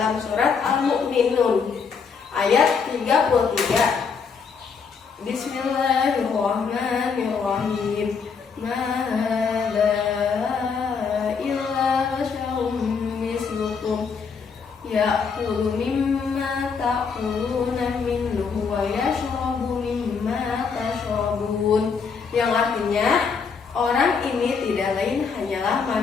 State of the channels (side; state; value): right; quieter; 5.7 dB